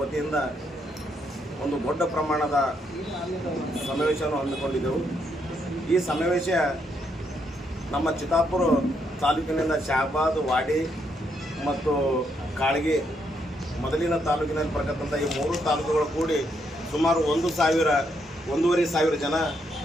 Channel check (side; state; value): both; normal; correlation 0.76